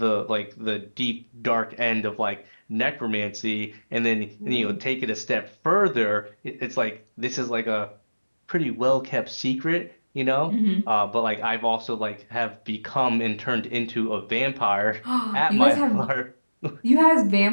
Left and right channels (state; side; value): inverted; both; correlation -1.00